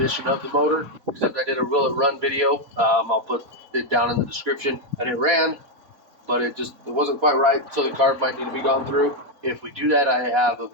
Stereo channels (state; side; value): late; left; 4.2 ms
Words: of the motor, except I did a Will It Run video. I'll put it down in the description, and it ran, but it wasn't quite right, so the carb might need to be gone through. If we do that, I have a